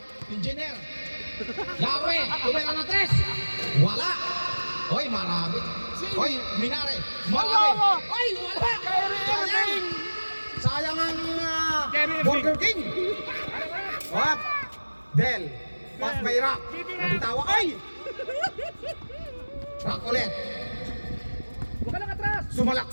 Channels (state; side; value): inverted; both; correlation -1.00